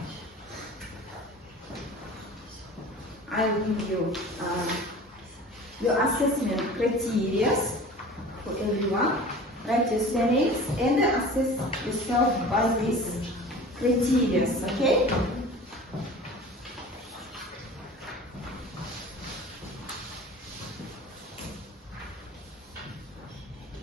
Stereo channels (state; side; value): normal; both; correlation 0.40